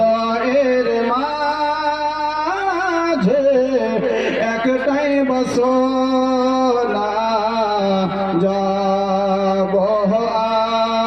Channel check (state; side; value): noise; right; hum, 24 dB below the sound